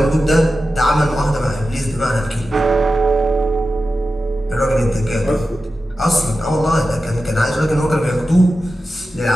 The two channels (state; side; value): normal; both; correlation 0.92